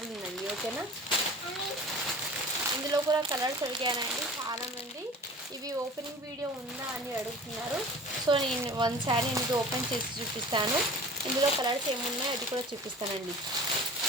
ఉందండి, ఓకేనా. ఇందులో కూడా కలర్స్ అడిగానండి చాలామంది, ఇవి ఓపెనింగ్ వీడియో ఉందా అని అడుగుతున్నారు. సో నేను 1 శారీ అనేది ఓపెన్ చేసి చూపిస్తాను. ఇందులో కలర్స్ ఏమున్నాయో అది కూడా చూపిస్తానండి,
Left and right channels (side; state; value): both; normal; correlation 0.42